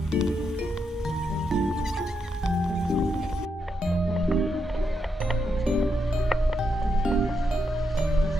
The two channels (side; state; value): both; normal; correlation 0.82